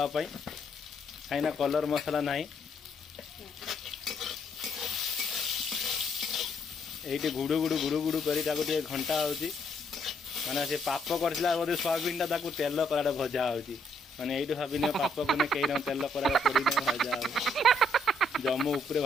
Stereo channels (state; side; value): normal; both; correlation 0.71